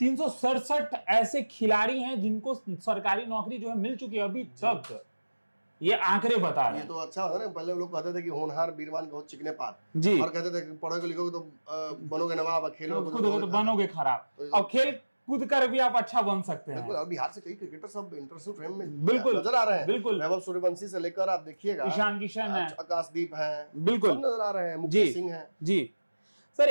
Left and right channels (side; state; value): both; inverted; correlation -1.00